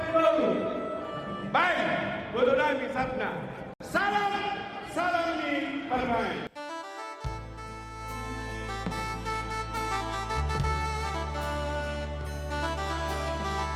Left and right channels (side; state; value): both; identical; correlation 1.00